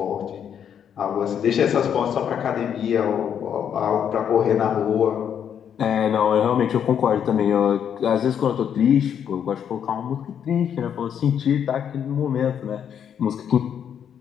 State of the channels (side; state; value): right; quieter; 8.5 dB